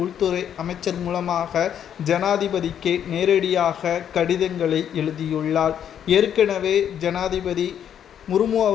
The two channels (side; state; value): right; quieter; 9.3 dB